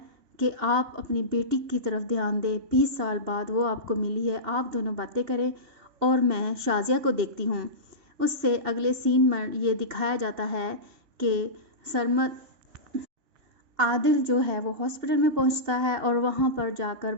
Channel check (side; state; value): left; late; 2.8 ms